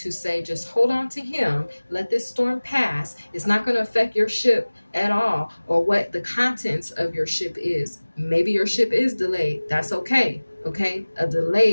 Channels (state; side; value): inverted; both; correlation -1.00